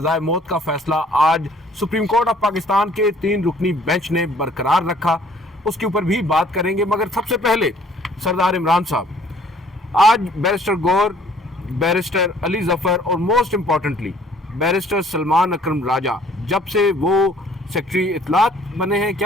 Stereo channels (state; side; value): normal; both; correlation 0.57